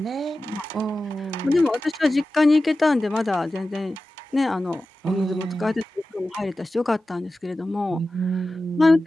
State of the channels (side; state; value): both; normal; correlation 0.94